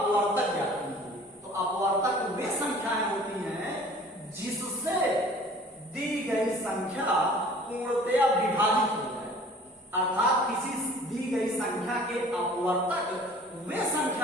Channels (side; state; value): both; normal; correlation 0.49